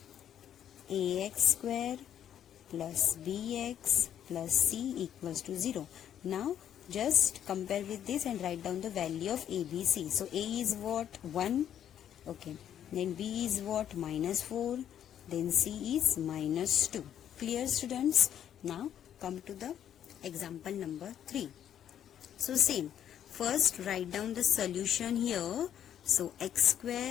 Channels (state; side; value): quieter; right; 10.0 dB